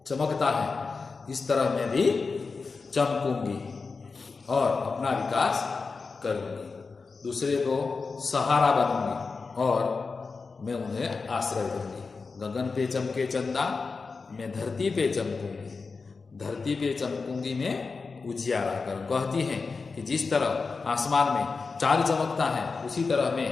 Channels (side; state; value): right; quieter; 4.5 dB